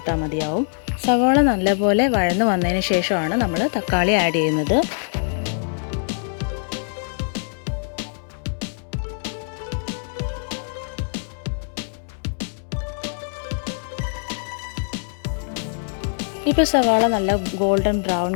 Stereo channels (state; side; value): silent; right; digital silence